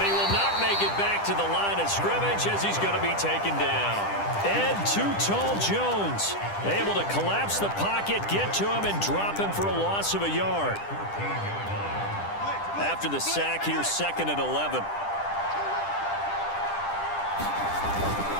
he will not make it back to the line of scrimmage as he's going to be taken down. Ed Too Tall Jones able to collapse the pocket, get to him, and drop him for a loss of a yard. After the sack, here's 2nd and 11.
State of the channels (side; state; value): right; late; 10 ms